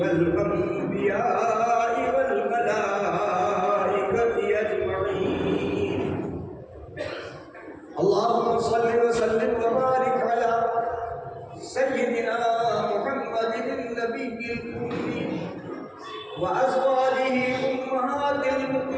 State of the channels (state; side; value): identical; both; correlation 1.00